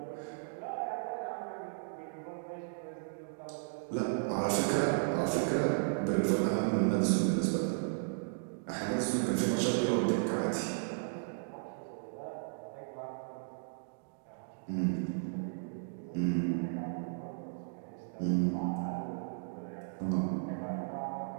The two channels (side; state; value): left; silent; digital silence